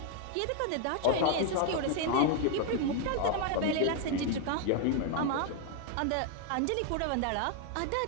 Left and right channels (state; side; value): different; both; correlation 0.00